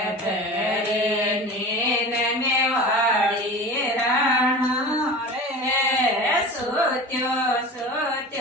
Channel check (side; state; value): both; normal; correlation 0.34